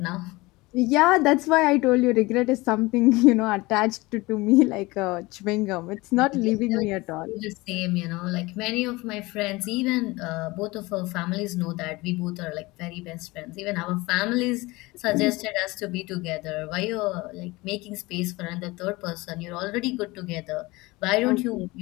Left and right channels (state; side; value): quieter; right; 22.0 dB